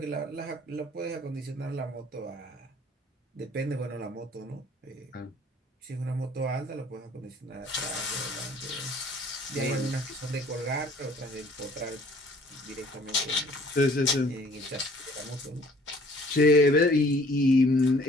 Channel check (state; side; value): normal; both; correlation 0.55